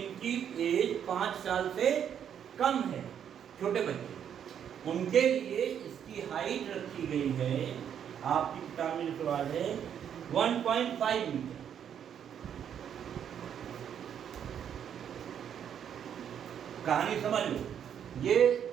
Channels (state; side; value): quieter; left; 8.8 dB